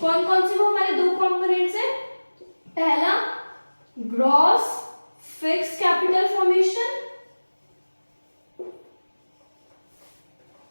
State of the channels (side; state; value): both; inverted; correlation -1.00